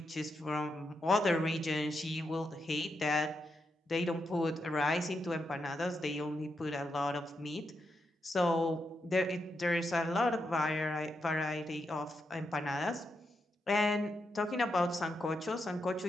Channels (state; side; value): normal; both; correlation 0.84